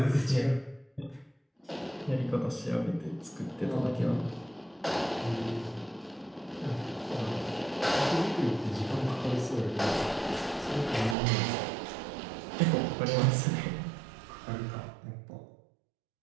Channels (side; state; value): left; drops out; at 11.2 s